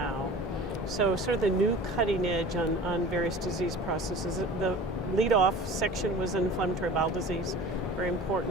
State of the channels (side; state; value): both; normal; correlation 0.40